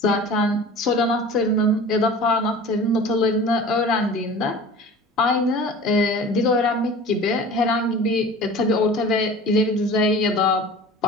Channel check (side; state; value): both; normal; correlation 0.40